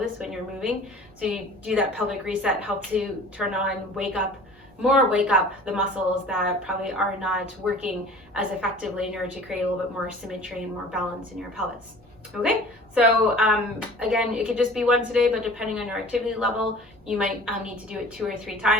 when you're moving. So you do that pelvic reset, help to turn on, wake up the muscles that probably are not working as effectively in order to create a little bit more symmetry and more balance in your pelvis. Okay, so again, it could just be once a day, but depending on your activity level, you might need to do it 2 or 3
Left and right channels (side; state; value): both; normal; correlation 0.44